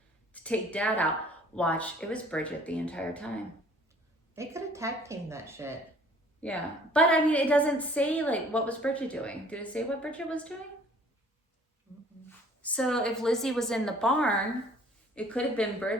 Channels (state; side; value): normal; both; correlation 0.54